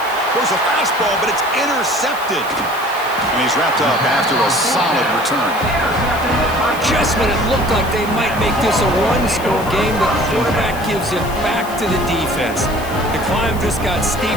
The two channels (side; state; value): left; noise; hiss, 16 dB below the sound